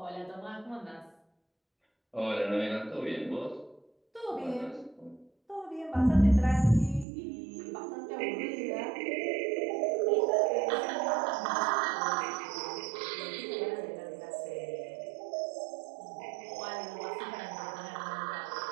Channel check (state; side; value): drops out; left; at 7.1 s